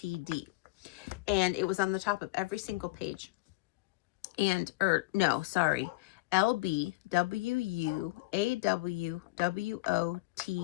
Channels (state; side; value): quieter; right; 21.1 dB